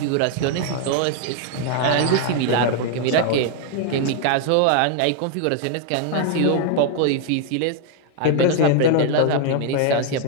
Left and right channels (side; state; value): both; different; correlation 0.00